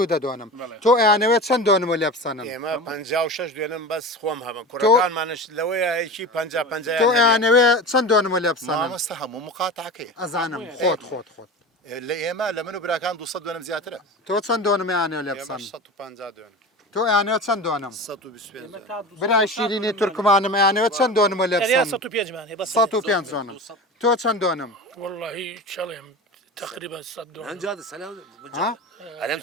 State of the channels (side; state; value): both; normal; correlation 0.30